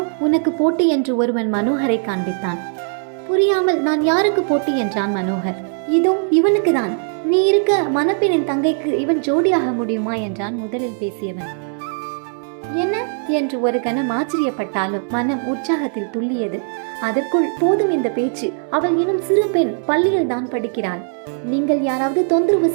உனக்கு போட்டி என்று ஒருவன் மனோகரை காண்பித்தான். புரியாமல் நான் யாருக்கு போட்டி என்றான் மனோகர். இதோ இவனுக்கு தான், நீ இருக்க மணப்பெண்ணின் தங்கைக்கு இவன் ஜோடியாக முடியுமா என்றான் முதலில் பேசியவன். என்ன என்று ஒரு கணம் ஆச்சரியப்பட்டாலும் மனம் உற்சாகத்தில் துள்ளியது. அதற்குள் போதும் இந்த பேச்சு, அவள் இன்னும் சிறு பெண், பள்ளியில் தான் படிக்கிறாள். நீங்கள் யாராவது தொந்தரவு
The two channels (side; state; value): left; silent; 61 dB below the other